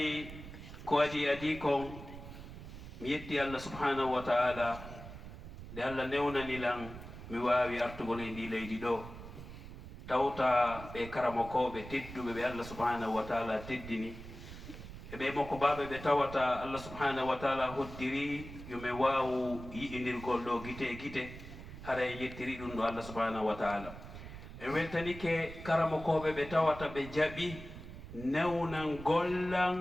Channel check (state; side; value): noise; right; rumble, 12 dB below the sound